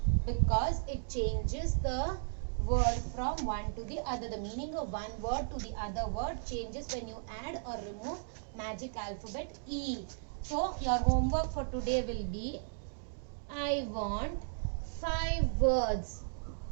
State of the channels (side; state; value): left; silent; digital silence